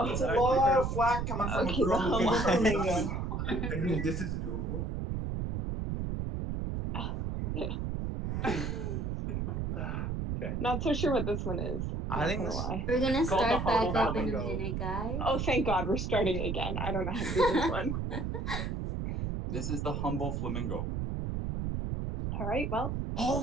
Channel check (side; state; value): right; noise; rumble, 2 dB below the sound